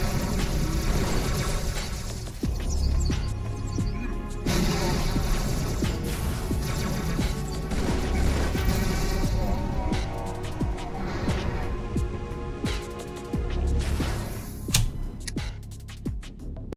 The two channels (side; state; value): both; identical; correlation 1.00